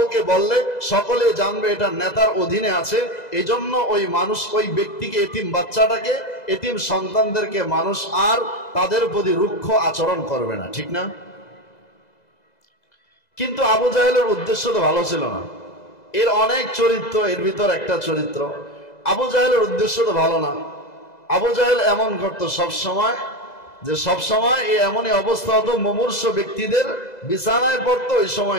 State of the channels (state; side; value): late; right; 2.0 ms